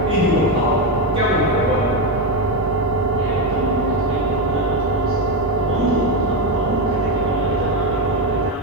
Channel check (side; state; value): both; normal; correlation 0.09